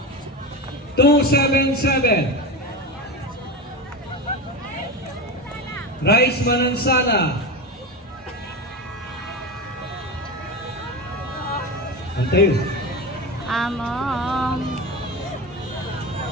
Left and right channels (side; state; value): both; normal; correlation 0.23